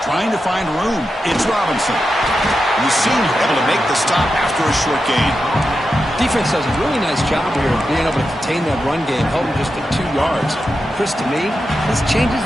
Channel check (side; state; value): both; normal; correlation 0.89